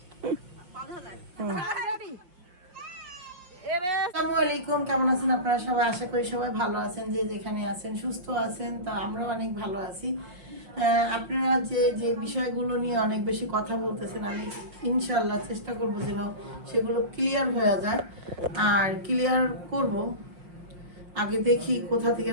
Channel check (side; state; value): left; late; 5.6 ms